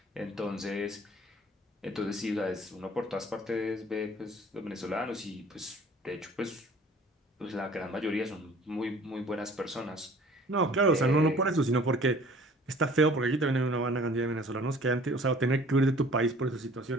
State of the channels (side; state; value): both; normal; correlation 0.51